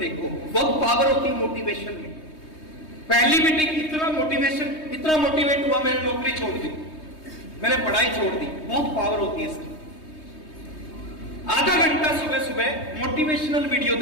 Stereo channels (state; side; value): late; right; 3.2 ms